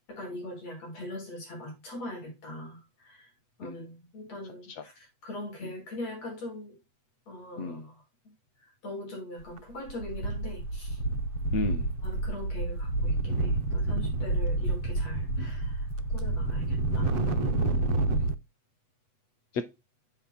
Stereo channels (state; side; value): late; right; 8.1 ms